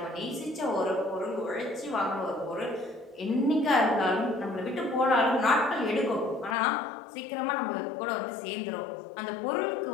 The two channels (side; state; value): right; drops out; at 6.6 s